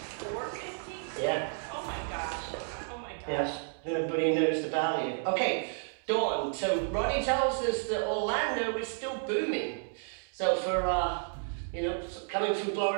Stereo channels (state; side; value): silent; left; 57 dB below the other